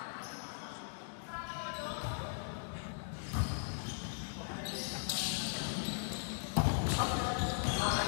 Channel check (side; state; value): right; silent; digital silence